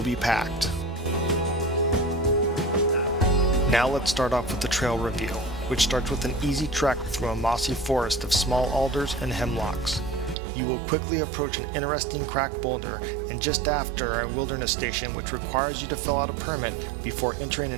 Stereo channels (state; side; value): drops out; left; at 10.4 s